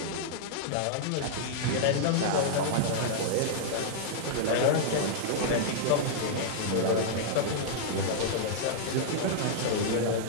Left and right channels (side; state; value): both; different; correlation -0.02